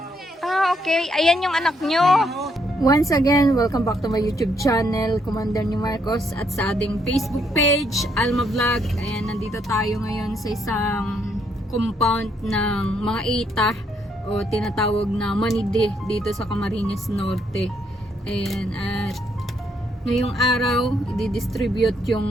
Ah, okay. Ayan yung anak nyo. Once again, welcome back to my YouTube channel, Commander ni Marcos, at sa ating Facebook page, Alma Vlog. Ayan, nandito tayo ngayon sa isang compound ng mga ita o tinatawag na Manide dito sa Camarines Norte. Ayan, at ngayong araw, i-distribute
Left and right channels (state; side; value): normal; both; correlation 0.73